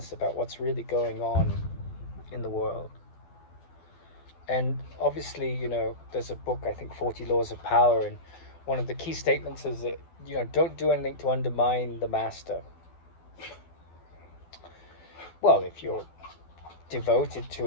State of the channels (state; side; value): late; right; 12 ms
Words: about what's really going on in the world. And obviously, there's a book, I think, 40 Laws of Power, and one of the key statements is that, don't do anything to undermine the master. Well, if you're devoted to